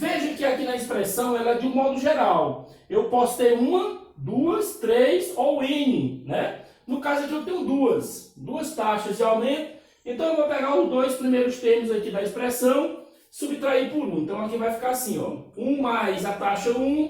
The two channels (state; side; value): identical; both; correlation 1.00